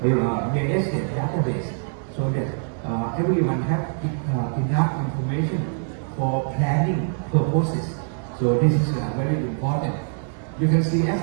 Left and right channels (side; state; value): left; silent; 63 dB below the other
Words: real estate database so that everyone have enough information for planning purposes. So this is very important. You can see, as